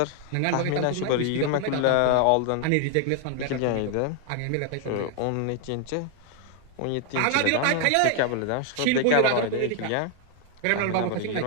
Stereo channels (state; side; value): different; both; correlation 0.00